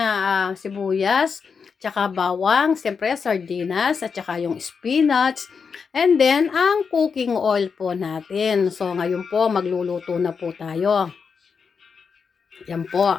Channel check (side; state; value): right; quieter; 5.8 dB